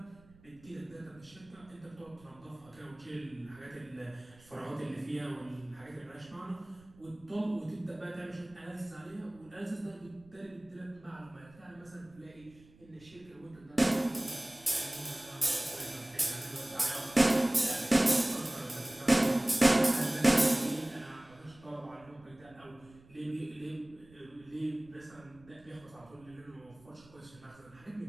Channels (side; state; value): right; noise; rumble, 25 dB below the sound